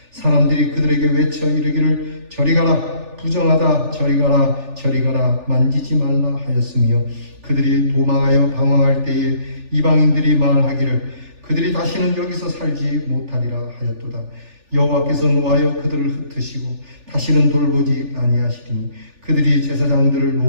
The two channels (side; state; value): left; late; 3.4 ms